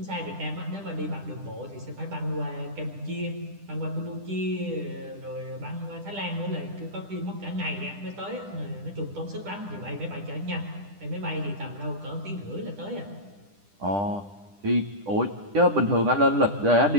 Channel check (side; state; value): left; late; 10 ms